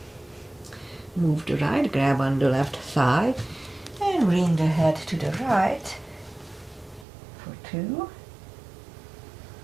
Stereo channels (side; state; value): left; drops out; at 7.1 s